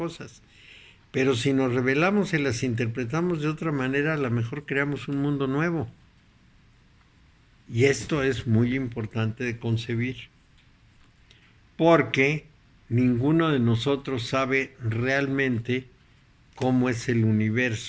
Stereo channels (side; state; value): both; identical; correlation 1.00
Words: Pero si nos rebelamos y las interpretamos de otra manera, a lo mejor creamos un mundo nuevo. Y esto es muy importante de concebir. Porque ninguno de nosotros sabe realmente cómo es el